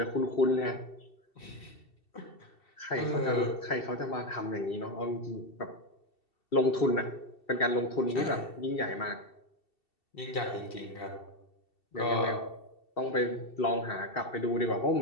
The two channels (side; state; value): right; late; 2.7 ms